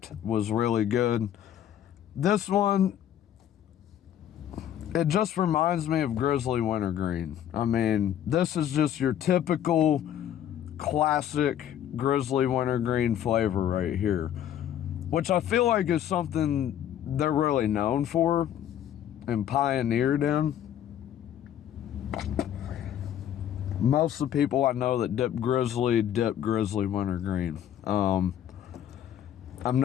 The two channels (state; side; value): quieter; right; 10.5 dB